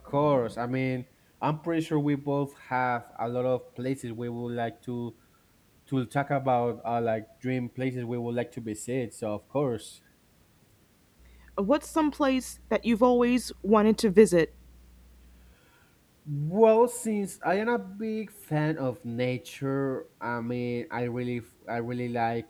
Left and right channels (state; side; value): identical; both; correlation 1.00